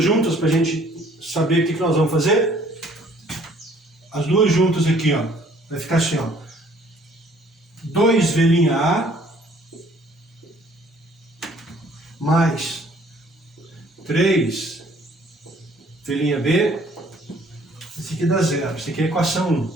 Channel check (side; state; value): both; normal; correlation 0.59